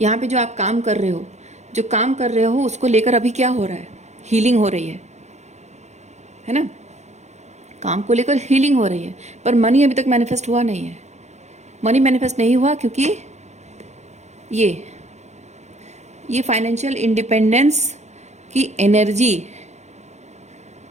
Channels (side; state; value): left; late; 0.33 ms